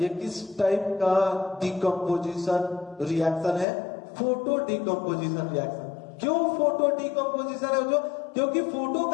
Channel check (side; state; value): right; drops out; at 3.7 s